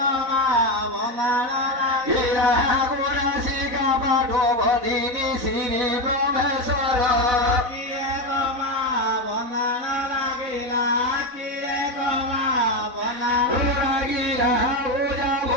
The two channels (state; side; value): late; left; 4.0 ms